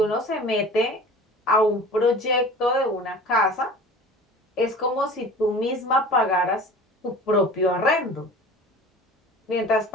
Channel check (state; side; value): normal; both; correlation 0.41